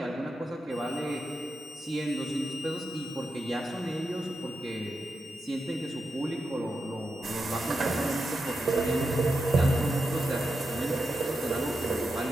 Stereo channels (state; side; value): normal; both; correlation 0.88